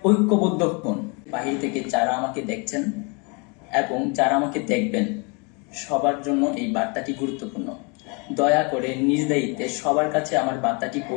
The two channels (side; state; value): right; quieter; 32.6 dB